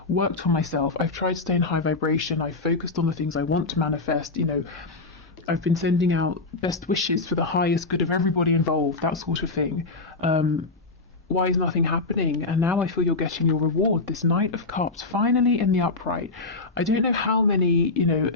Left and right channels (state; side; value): quieter; right; 3.5 dB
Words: worked for myself, I've tried to stay in high vibration, I've focused on the things I want to manifest, I've been sending out best wishes for the highest good of everybody involved, that sort of thing. Why is nothing happening? And now I feel you're getting your reward. This Knight of Cups, finally in the upright. I don't know how many,